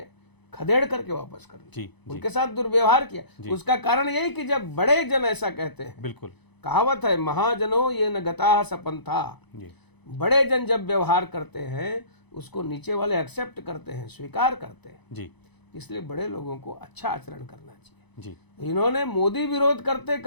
खदेड़ करके वापस कर दिया, जी जी उनके साथ दुर्व्यवहार किया। जी। उसका कारण यही कि जब बड़े जन ऐसा कहते हैं, बिल्कुल कहावत है, महाजनों ये न गता सपंथा, जी बड़े जन जब व्यवहार करते हैं उसको नीचे वाले एक्सेप्ट करते हैं, स्वीकार करते हैं। जी इसलिए बड़े लोगों को अच्छा आचरण करना चाहिए। जी इन्होंने मोदी विरोध करते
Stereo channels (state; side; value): late; right; 0.99 ms